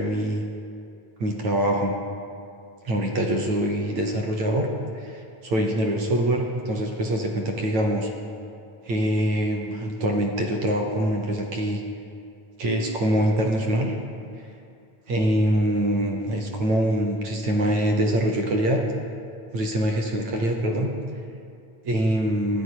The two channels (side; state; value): left; late; 9.0 ms